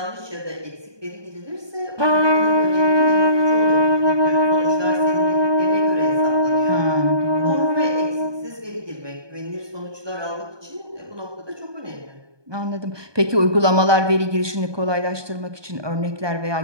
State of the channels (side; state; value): left; late; 1.2 ms